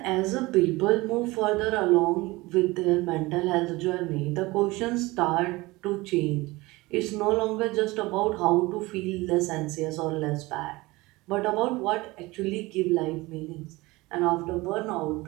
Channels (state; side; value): quieter; left; 21.5 dB